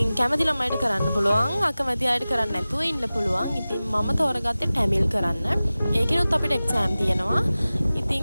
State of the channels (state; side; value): inverted; both; correlation -0.97